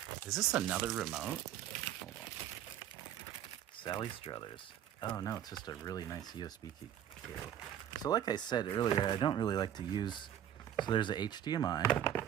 Is this another remote? Hold on. Sally Struthers. Oh, no, it's just a really nice USB cable. So like I said earlier, I don't really like to use... So there's a HDMI.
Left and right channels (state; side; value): quieter; left; 10.5 dB